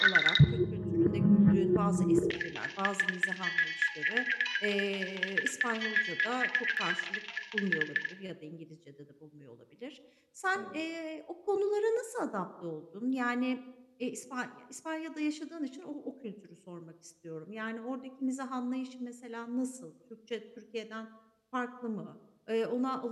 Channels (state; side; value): identical; both; correlation 1.00